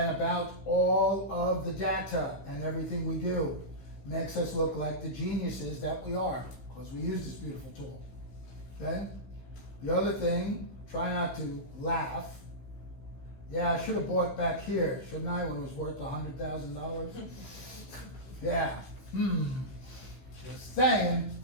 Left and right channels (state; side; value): late; right; 15 ms